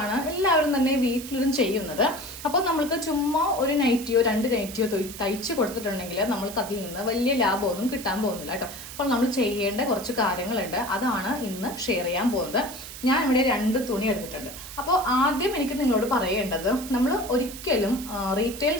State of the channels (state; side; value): noise; right; hiss, 12 dB below the sound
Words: എല്ലാവരും തന്നെ വീട്ടിലിരുന്ന് ചെയ്യുന്നത്. അപ്പോൾ നമ്മൾക്ക് ചുമ്മാ ഒരു നൈറ്റിയോ രണ്ട് നൈറ്റിയോ തയ്ച്ച് കൊടുത്തിട്ടുണ്ടെങ്കിൽ നമ്മൾക്ക് അതിൽ നിന്ന് വലിയ ലാഭമൊന്നും കിട്ടാൻ പോകുന്നില്ല കേട്ടോ. അപ്പോൾ നമ്മൾ ചെയ്യേണ്ട കുറച്ച് കാര്യങ്ങളുണ്ട്, അതാണ് ഇന്ന് ഷെയർ ചെയ്യാൻ പോകുന്നത്. ഞാൻ ഇവിടെ 2 തുണി എടുത്തിട്ടുണ്ട്. അപ്പോൾ ആദ്യം എനിക്ക് നിങ്ങളോട് പറയേണ്ടത്, നമ്മൾ ഒരിക്കലും റീറ്റെയിൽ